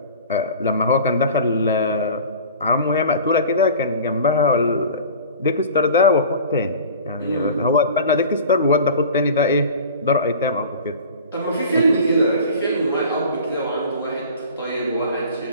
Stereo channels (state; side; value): inverted; both; correlation -0.40